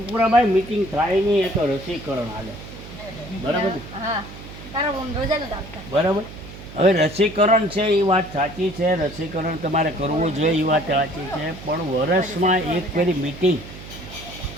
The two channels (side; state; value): right; noise; hum, 14 dB below the sound